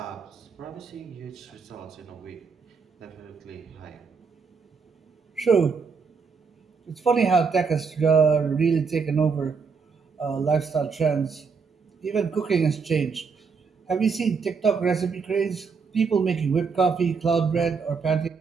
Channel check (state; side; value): quieter; left; 5.3 dB